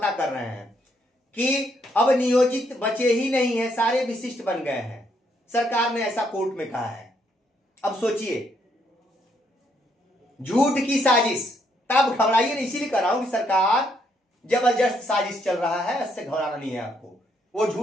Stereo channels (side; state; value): both; normal; correlation 0.73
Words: कर रहे हैं कि अब नियोजित बचे ही नहीं है, सारे विशिष्ट बन गए हैं, सरकार ने ऐसा कोर्ट में कहा है। अब सोचिए, झूठ की साजिश, तब घबराइए नहीं, इसीलिए कर रहा हूं कि सरकार जबरदस्त साजिश चल रहा है, इससे घबराना नहीं है आपको। वो